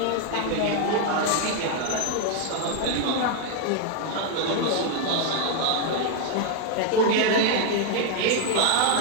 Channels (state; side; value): different; both; correlation 0.00